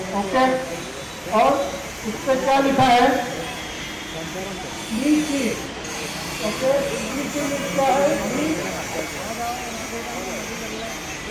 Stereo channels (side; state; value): both; identical; correlation 1.00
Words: ओके। और उससे क्या लिखा है? नीचे, ओके, नीचे लिखा है